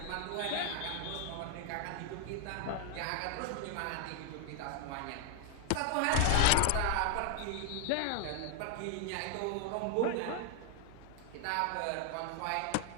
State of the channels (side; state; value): both; different; correlation 0.00